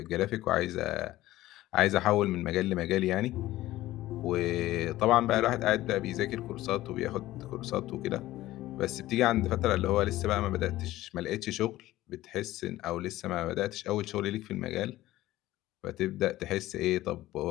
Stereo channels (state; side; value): quieter; right; 16.0 dB